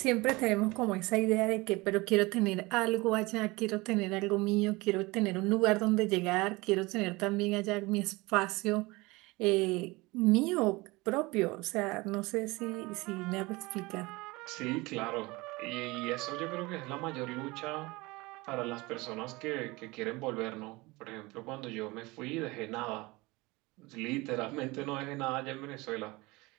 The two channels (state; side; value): quieter; left; 22.9 dB